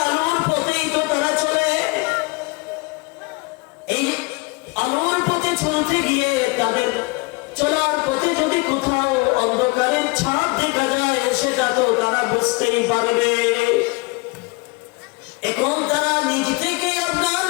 আলোর পথেই তো তারা চলে। এই আলোর পথে চলতে গিয়ে তাদের চলার পথে যদি কোথাও অন্ধকারের ছাপ দেখা যায় সেটা তো তারা বুঝতেই পারবে। এখন তারা নিজ থেকে আপনার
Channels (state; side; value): quieter; right; 27.0 dB